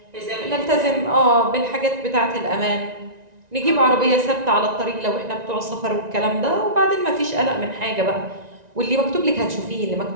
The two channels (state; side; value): late; left; 1.9 ms